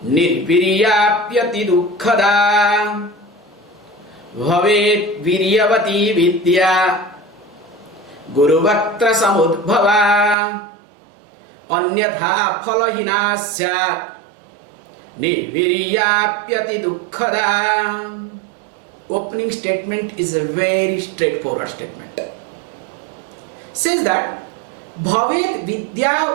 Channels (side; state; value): left; drops out; at 10.4 s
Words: Nirviryapyati Dukkhada. Bhavet Viryavati Vidya Guru Vaktra Samudbhava Anyatha Phalahina Syat Nirviryapyati Dukkhada. Opening statement is a very straightforward statement. Says that Bhavet